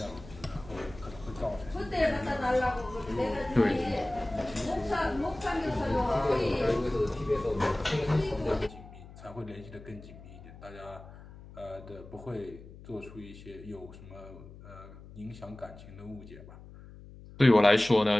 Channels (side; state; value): left; noise; hum, 17 dB below the sound